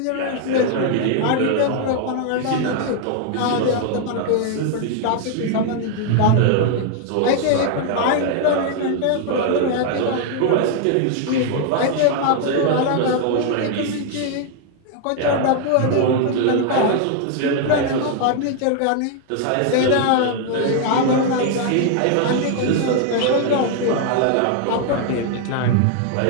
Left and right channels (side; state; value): both; different; correlation 0.00